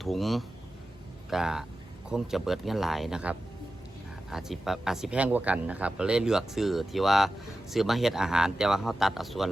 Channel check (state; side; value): normal; both; correlation 0.93